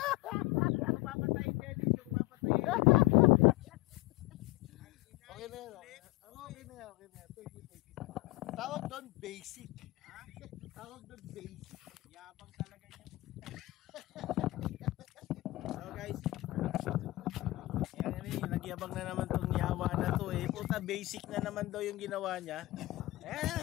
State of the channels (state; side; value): quieter; right; 19.5 dB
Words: Yung papatayin Dennis, yung papatayin. Okay na yan. Okay na yan. Thank you. Tawag doon basic. Tawag doon basic. Yabang talaga niya. So guys, nagyabang na naman tong yawa na to eh. Puta, basic na naman daw yung ginawa niya.